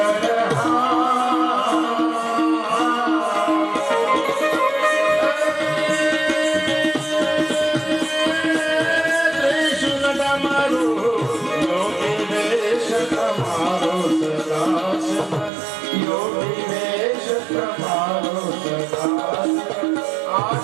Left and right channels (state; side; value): drops out; left; at 15.5 s